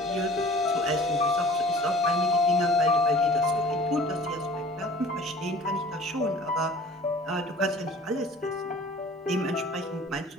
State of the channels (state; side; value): normal; both; correlation 0.47